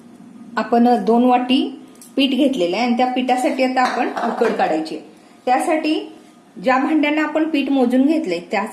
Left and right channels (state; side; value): identical; both; correlation 1.00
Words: आपण 2 वाटी पीठ घेतलेलं आहे आणि त्या पिठासाठी आता आपण उकड काढायची. त्यासाठी ज्या भांड्यानं आपण पीठ मोजून घेतले